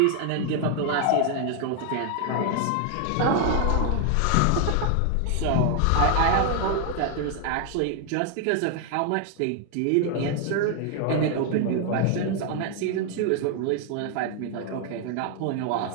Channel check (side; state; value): both; different; correlation 0.00